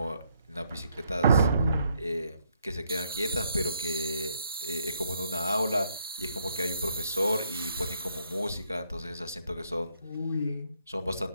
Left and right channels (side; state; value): both; inverted; correlation -0.73